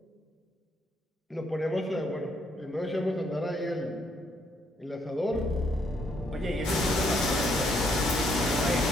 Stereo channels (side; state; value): both; normal; correlation 0.72